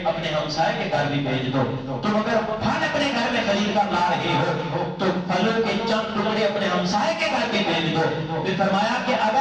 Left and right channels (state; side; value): identical; both; correlation 1.00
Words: اپنے ہمسائے کے گھر بھی بھیج دو۔ تم اگر پھل اپنے گھر میں خرید کر لا رہے ہو تو پھلوں کے چند ٹکڑے اپنے ہمسائے کے گھر بھی بھیج دو۔ پھر فرمایا کہ